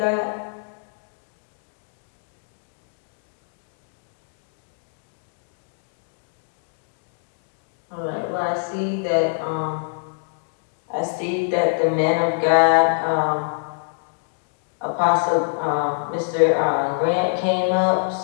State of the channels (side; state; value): right; silent; digital silence